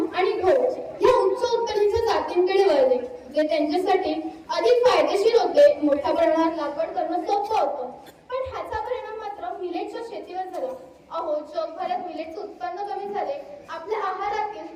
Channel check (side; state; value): both; identical; correlation 1.00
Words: आणि गहू या उच्च उत्पादनाच्या जातींकडे वळले, जे त्यांच्यासाठी अधिक फायदेशीर होते। मोठ्या प्रमाणात लागवड करणं सोपं होतं, पण ह्याचा परिणाम मात्र मिलेटच्या शेतीवर झाला। जगभरात मिलेटचे उत्पन्न कमी झाले, आपल्या